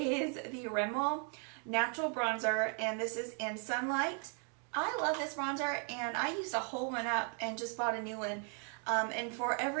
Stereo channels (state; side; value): quieter; left; 38.9 dB